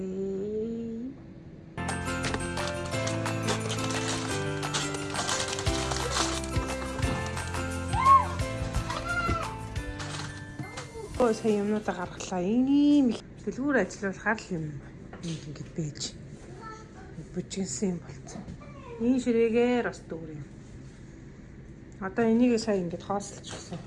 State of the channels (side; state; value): both; identical; correlation 1.00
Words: Сая юмнуудаа гаргалаа. Ийм их дэлгүүр ажиллуулахаар л юм ингэж байж бүжигсэн юм болцсон. Энэ ширээгээр бас дүүр юм. Одоо энийг сая ингэж хоослчихсан.